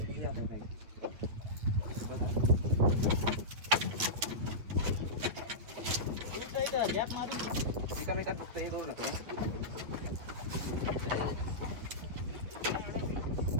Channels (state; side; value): late; left; 8.9 ms